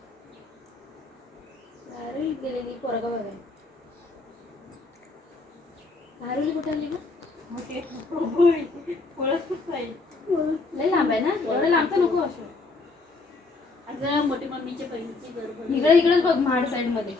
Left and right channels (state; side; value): quieter; right; 3.7 dB